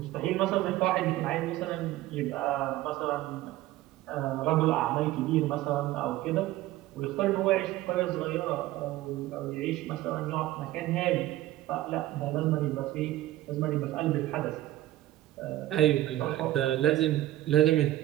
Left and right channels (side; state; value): left; quieter; 15.1 dB